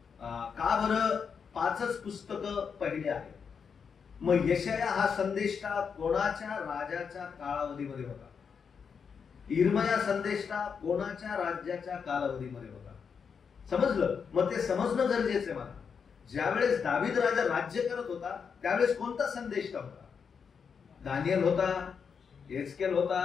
का बरं 5च पुस्तकं पहिले आहेत. मग यशाया हा संदेष्टा कोणाच्या राजाच्या कालावधीमध्ये होता, इर्मया संदेष्टा कोणाच्या राज्याच्या कालावधीमध्ये होता. समजलं. मग ते समजणं गरजेचं आहे मला. ज्यावेळेस दावीद राजा राज्य करत होता त्यावेळेस कोणता संदेष्टा होता, दानियल होता, एस्केल होता,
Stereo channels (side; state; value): right; quieter; 6.3 dB